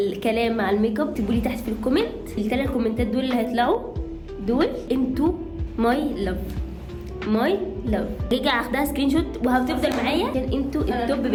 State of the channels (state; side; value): identical; both; correlation 1.00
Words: مع الميك اب تقولي تحت في الكومنت. ال3 كومنتات دول اللي هيطلعوا دول انتوا ماي لاف. ماي لاف رجع اخدها سكرين شوت وهتفضل معايا عشان انتوا التوب